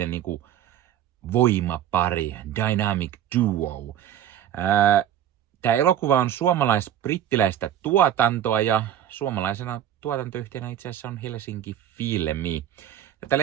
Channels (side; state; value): left; quieter; 10.7 dB